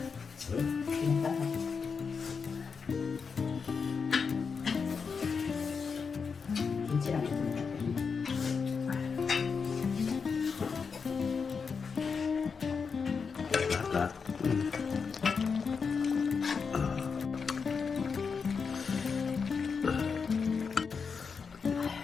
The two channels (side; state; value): right; quieter; 5.5 dB